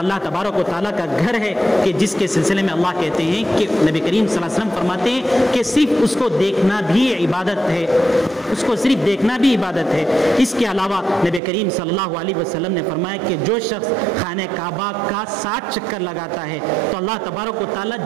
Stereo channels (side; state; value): left; drops out; at 11.4 s